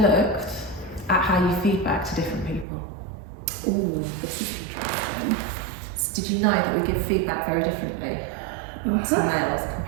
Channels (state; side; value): drops out; left; at 2.7 s